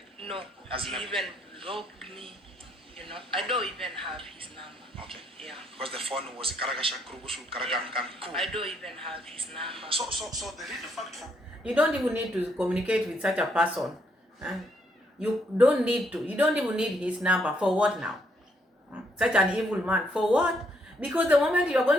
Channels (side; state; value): both; normal; correlation 0.72